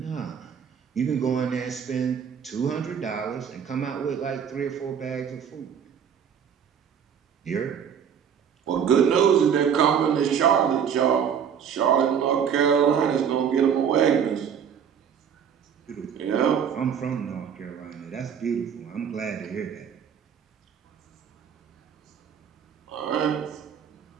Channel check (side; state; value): left; quieter; 7.8 dB